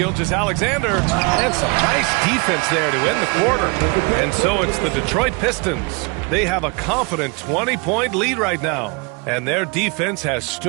and some nice defense there to end the quarter. And so it's the Detroit Pistons. They have a confident 20-point lead right now, and their defense has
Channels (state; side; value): quieter; left; 30.4 dB